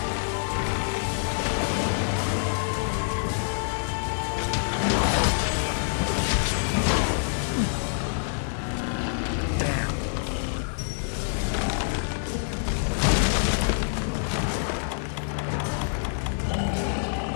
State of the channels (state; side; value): silent; right; digital silence